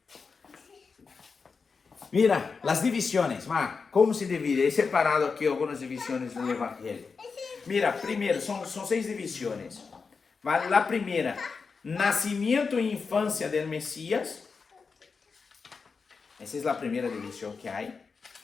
Mira, as divisões, como se divide? He separado aqui algumas divisões do Evangelho. Mira, primeiro, são 6 divisões. A primeira, nascimento e infância del Messias. Essa é a primeira divisão que há.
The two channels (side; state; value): right; quieter; 5.0 dB